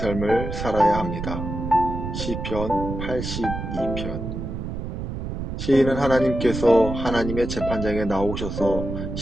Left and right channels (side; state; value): right; noise; rumble, 5 dB below the sound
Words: 살아야 합니다. 시편 82편. 시인은 하나님께서 하나님의 재판장에 나오셔서